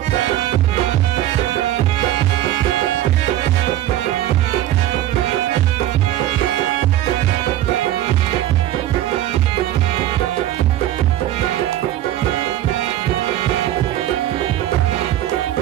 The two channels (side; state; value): left; quieter; 13.3 dB